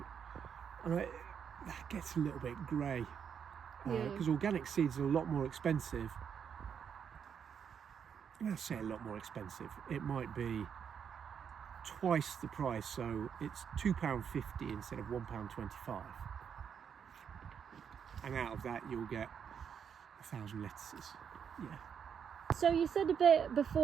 that gets a little bit grey. Because organic seeds are a lot more expensive. I say a lot more expensive. It might be twice the price, so it's £2.50 instead of £1.25. And out of that, you'll get 1,000 lettuces. Yeah. So you said a bit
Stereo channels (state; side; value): quieter; left; 7.5 dB